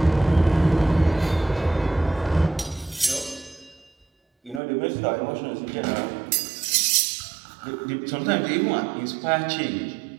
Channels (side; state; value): left; drops out; at 4.6 s